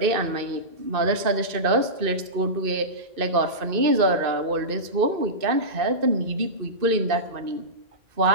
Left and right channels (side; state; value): left; late; 2.5 ms